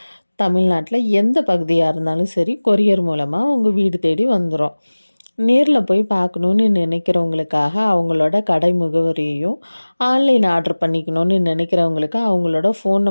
தமிழ்நாட்டில் எந்த பகுதியாக இருந்தாலும் சரி, கொரியர் மூலமாக உங்கள் வீடு தேடி வந்துடும். நேரில் போய் பார்க்கணுன்னு நினைக்கிறவங்களுக்காக அவங்களோட கடை முகவரியையும், ஆன்லைன் ஆர்டர் பண்ணிக்கணும்னு நினைக்கிறவங்களுக்கு அவங்களோட ஃபோன்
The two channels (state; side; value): inverted; both; correlation -1.00